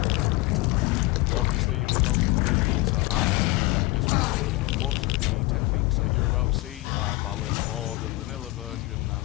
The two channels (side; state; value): right; quieter; 21.1 dB